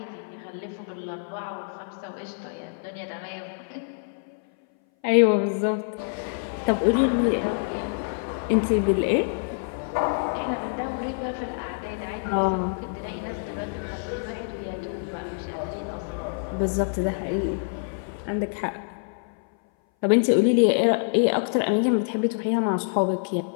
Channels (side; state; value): right; silent; 59 dB below the other